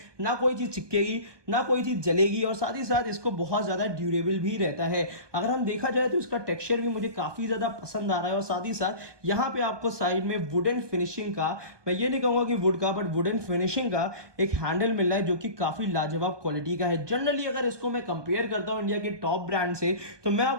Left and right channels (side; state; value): left; late; 1.2 ms